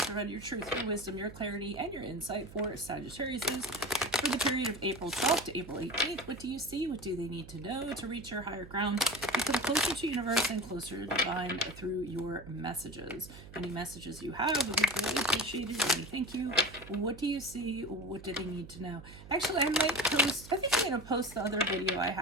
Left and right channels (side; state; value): right; noise; hum, 17 dB below the sound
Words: provide your truth, your wisdom, your clarity, and your insight for Sagittarius for the period of April 12th to April 18th? What do you see? What do they need to know to reach your higher ground? Become closer to universe and closer to divine through your messages. Any messages you have would be greatly appreciated. And thank you. What do you see? What do they need to know? Actually, I might post, I think I'm going to post the other video I